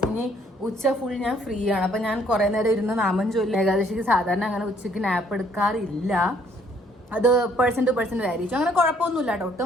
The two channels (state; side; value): normal; both; correlation 0.64